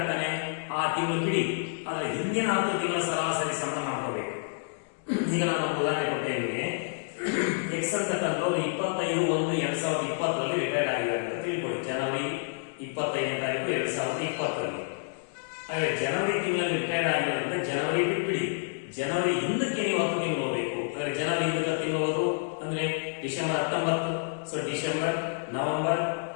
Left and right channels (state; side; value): silent; right; digital silence